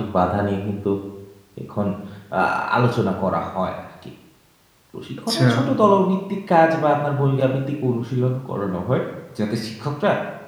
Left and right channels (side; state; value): both; identical; correlation 1.00